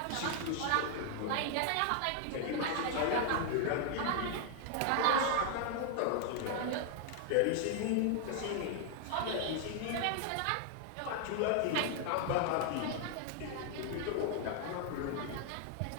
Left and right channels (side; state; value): both; different; correlation 0.00